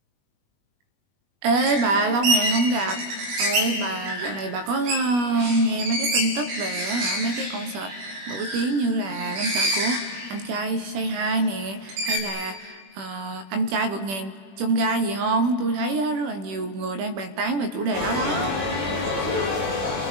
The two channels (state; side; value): late; left; 21 ms